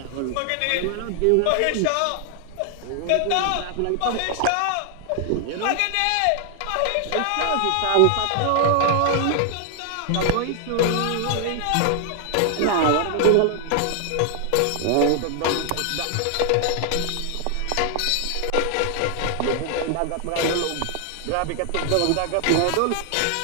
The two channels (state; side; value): different; both; correlation 0.00